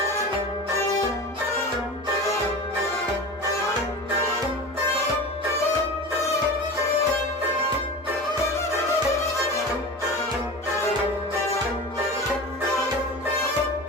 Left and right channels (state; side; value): normal; both; correlation 0.31